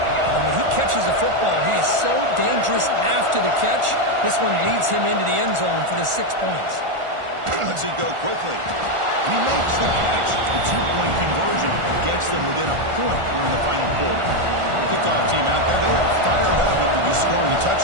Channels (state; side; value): late; left; 1.4 ms